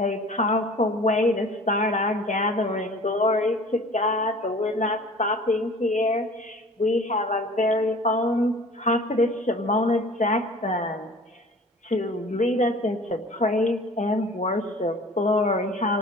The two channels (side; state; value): both; normal; correlation 0.45